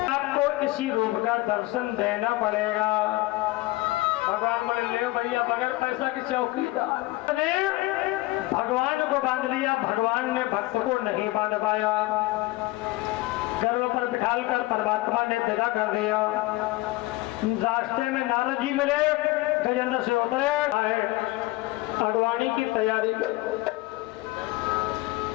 आपको इसी रूप का दर्शन देना पड़ेगा। भगवान बोले ले भैया बगैर पैसा की चौकीदार ने भगवान को बांध लिया, भगवान ने भक्त को नहीं बांध पाया। गर्व पर बिठाल कर परमात्मा ने विदा कर दिया। रास्ते में नारद जी मिले, गजेंद्र से उतरे, अगवानी की तैयारी करो,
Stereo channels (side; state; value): right; quieter; 19.6 dB